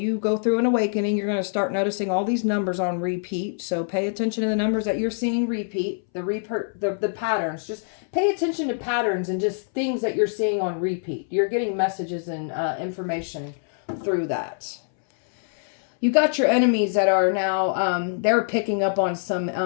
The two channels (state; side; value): silent; right; 62 dB below the other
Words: go through an awakening, you're going to start noticing all these numbers on repeat. So pay attention to the numbers that you're seeing repeat, the patterns. Just pay attention to patterns and just things that you're seeing on repeat. You're getting messages and information through that. You got your enemies that are now, they're picking up on